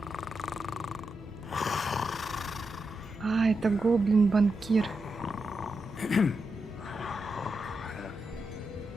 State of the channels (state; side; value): normal; both; correlation 0.86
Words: А, это гоблин-банкир.